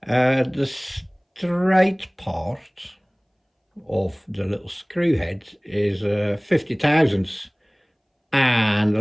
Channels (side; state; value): both; identical; correlation 1.00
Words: The straight part of the little screw head is 50 thousandths, and a